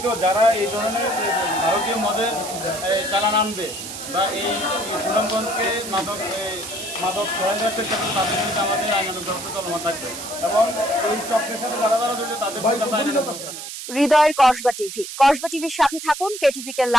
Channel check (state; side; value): noise; right; hiss, 9 dB below the sound